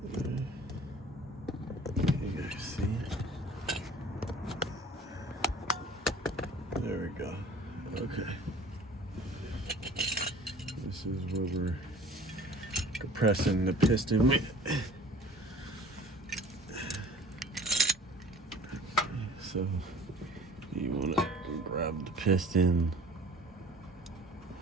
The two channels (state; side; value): normal; both; correlation 0.48